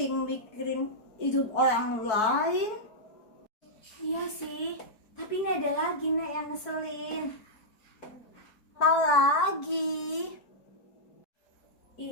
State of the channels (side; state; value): right; late; 4.6 ms